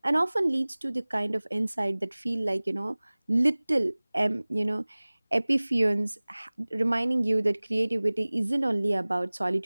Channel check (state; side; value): inverted; both; correlation -1.00